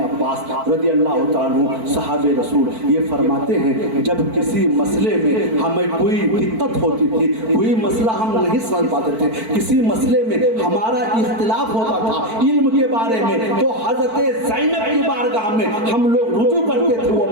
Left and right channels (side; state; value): left; late; 4.5 ms